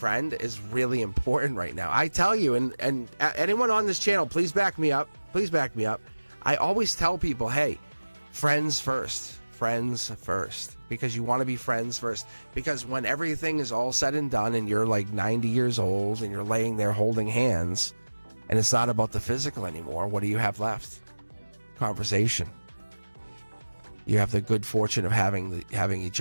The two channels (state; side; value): inverted; both; correlation -1.00